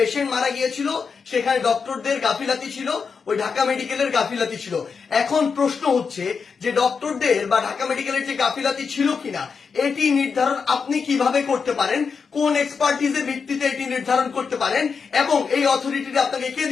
মারা গিয়েছিল সেখানে ডক্টরদের গাফিলাতি ছিল, ওই ঢাকা মেডিকেলের গাফিলাতি ছিল। এখন প্রশ্ন হচ্ছে যে ডক্টরদের বা ঢাকা মেডিকেলের যে গাফিলাতি ছিল কিনা এটি নির্ধারণ আপনি কিভাবে করতে পারেন, কোন এক্সপার্টিজের ভিত্তিতে এটি নির্ধারণ করতে পারেন এবং এই অথরিটিটা আপনাকে কে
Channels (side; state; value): right; quieter; 5.6 dB